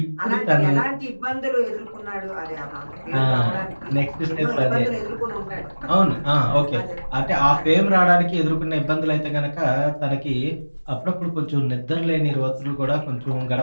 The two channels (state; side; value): inverted; both; correlation -1.00